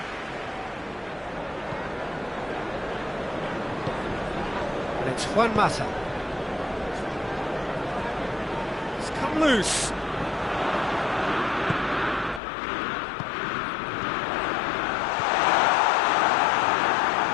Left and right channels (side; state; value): right; drops out; at 12.4 s